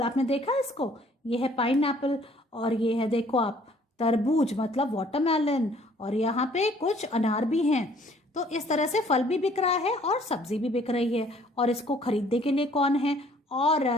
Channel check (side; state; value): both; normal; correlation 0.59